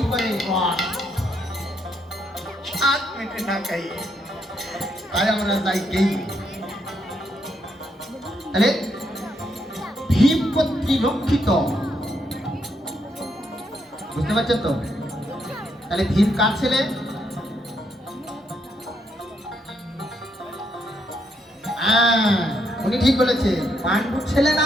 পরে রস স্বাদ মেটে না খাই। তাই আমরা যাই গেই। তাহলে ভীম কর্তৃক রক্ষিত, বুঝতে পারছেন তো? তাহলে ভীম কার ছেলে? উনি ঠিক বলেছে, পাণ্ডুর ছেলে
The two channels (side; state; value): both; normal; correlation 0.76